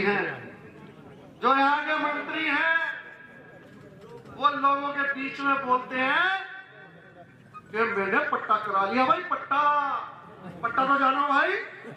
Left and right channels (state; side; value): identical; both; correlation 1.00